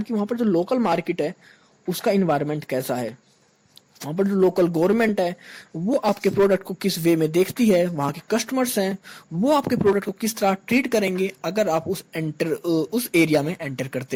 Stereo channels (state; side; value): identical; both; correlation 1.00